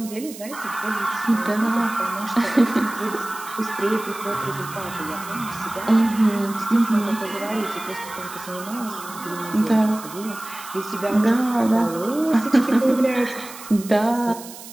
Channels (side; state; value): right; noise; hiss, 15 dB below the sound